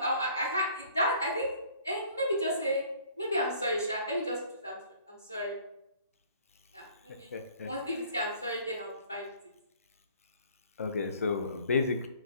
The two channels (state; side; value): inverted; both; correlation -0.55